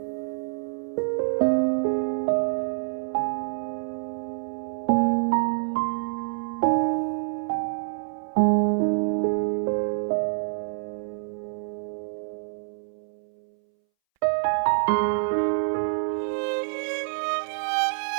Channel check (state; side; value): silent; left; 60 dB below the other